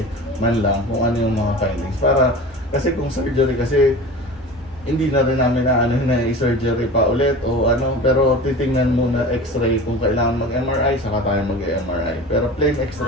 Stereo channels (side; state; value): both; normal; correlation 0.35